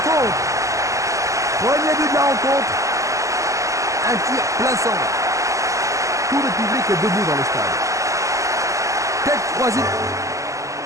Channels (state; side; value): late; left; 0.16 ms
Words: Premier but de la rencontre. Un tir plein centre. Tout le public est debout dans le stade. Tête croisée.